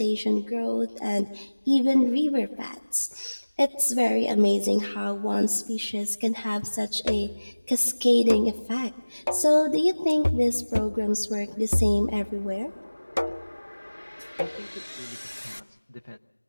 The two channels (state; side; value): inverted; both; correlation -1.00